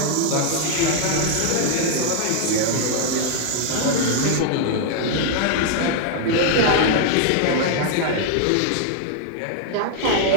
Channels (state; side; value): different; both; correlation 0.00